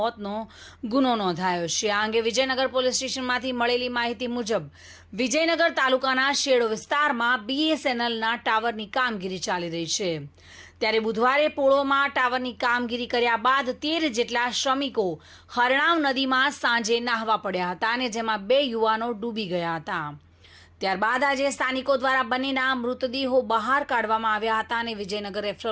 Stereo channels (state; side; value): identical; both; correlation 1.00